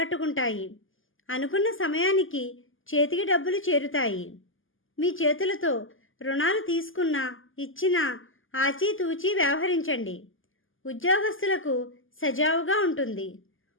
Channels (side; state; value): right; late; 0.58 ms